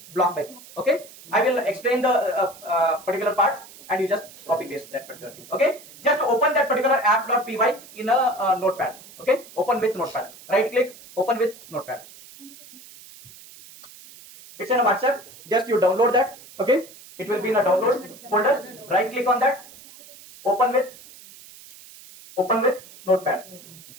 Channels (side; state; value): right; noise; hiss, 20 dB below the sound